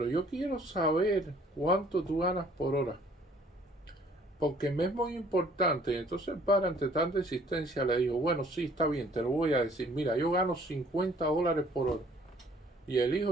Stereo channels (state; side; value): normal; both; correlation 0.58